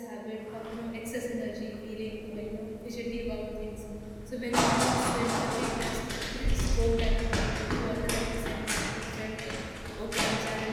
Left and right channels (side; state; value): both; identical; correlation 1.00